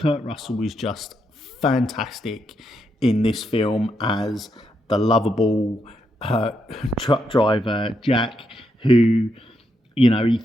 Russell is just fantastic in this film as the lovable truck driver, Jack, who, you know, he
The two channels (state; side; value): normal; both; correlation 0.81